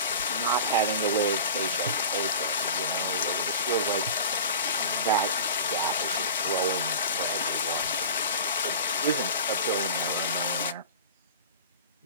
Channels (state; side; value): inverted; both; correlation -0.35